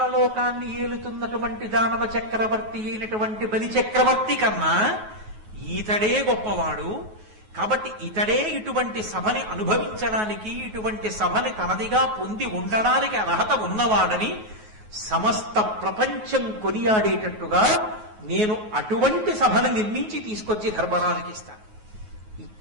లోకాన్ని ఏలుతున్నటువంటి దానవ చక్రవర్తి అయినటువంటి బలి చక్రవర్తి కన్నా ఈతడే గొప్పవాడు. కాబట్టి ఇతడే ఇటువంటి సభని అనుభవించడానికి, ఇటువంటి సభని తనదిగా పొంది ఉండడానికి అర్హత ఉన్నవాడని సమస్త ప్రపంచం కొనియాడేటట్టుగా నేను అటువంటి సభను నిర్మించి తీసుకొచ్చి ధర్మరాజుకి ఇస్తాను.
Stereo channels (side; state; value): left; late; 9.4 ms